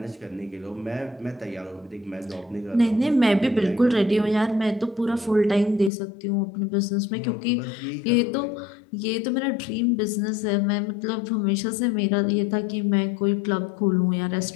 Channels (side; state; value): right; drops out; at 5.9 s